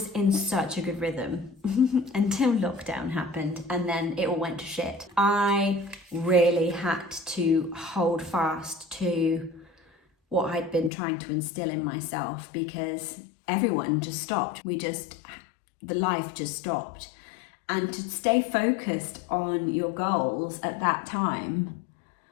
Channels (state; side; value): drops out; right; at 10.9 s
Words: in such a good rhythm until lockdown happened, and then it all went to shit. I really had to hold fast to what I'd been trying to instill in myself, because everyone just stopped. The life just stopped. And to stay focused on your goals at that time